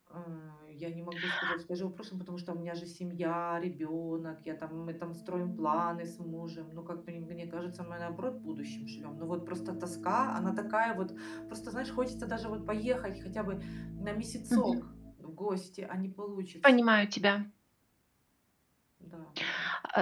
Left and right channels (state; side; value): identical; both; correlation 1.00